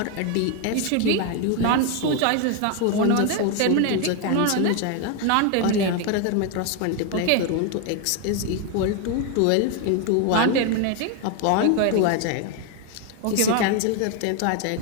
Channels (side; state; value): both; different; correlation 0.01